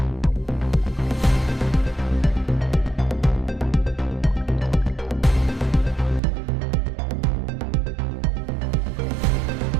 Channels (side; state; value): left; drops out; at 6.2 s